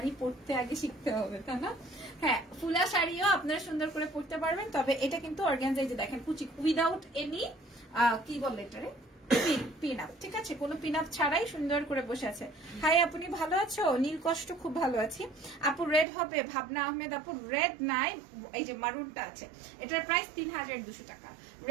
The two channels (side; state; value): left; drops out; at 16.1 s